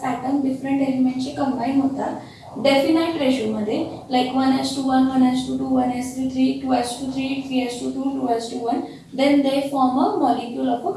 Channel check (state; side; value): identical; both; correlation 1.00